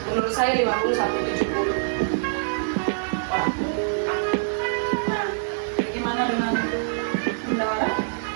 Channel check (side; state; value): left; silent; 56 dB below the other